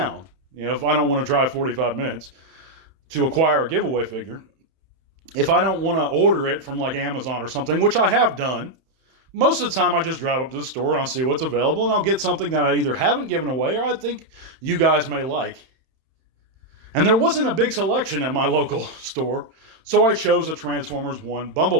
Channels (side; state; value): left; late; 31 ms